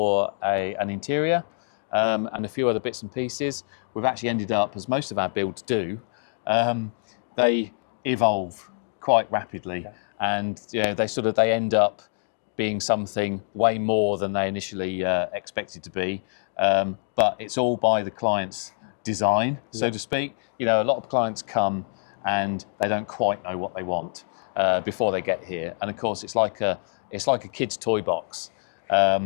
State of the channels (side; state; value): right; silent; digital silence